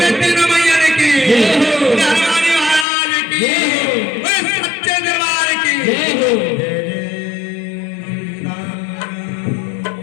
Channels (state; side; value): drops out; right; at 2.9 s